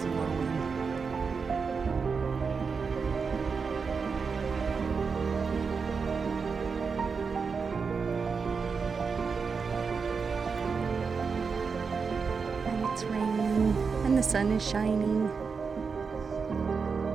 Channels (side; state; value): left; quieter; 5.3 dB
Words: And it's raining, and the sun is shining.